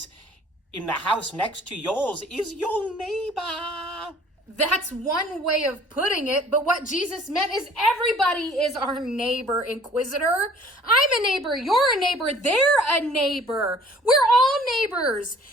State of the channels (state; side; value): normal; both; correlation 0.52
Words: in the house next to yours is your neighbor. That's one way of putting it, but what Jesus meant is everybody is our neighbor, Inquisitor. I'm a neighbor, you're a neighbor, they're a neighbor. We're all neighbors.